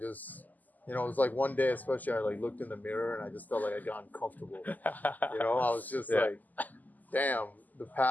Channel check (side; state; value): right; late; 0.082 ms